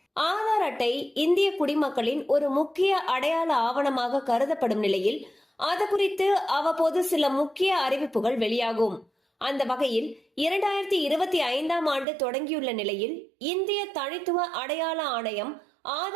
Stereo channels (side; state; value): left; drops out; at 12.1 s